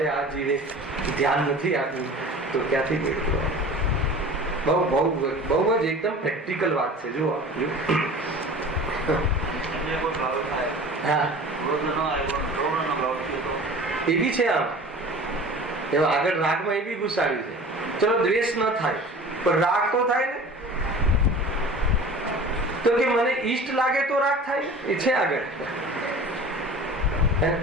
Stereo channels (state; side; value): normal; both; correlation 0.40